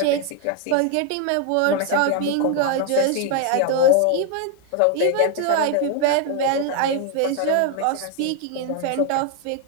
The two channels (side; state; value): both; different; correlation 0.01